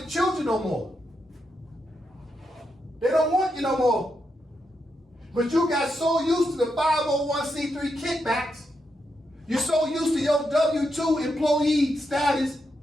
children no more. They don't want you no more. But you got so used to the 501c3 kickbacks. You're so used to your W-2 employee status.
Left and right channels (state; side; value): normal; both; correlation 0.83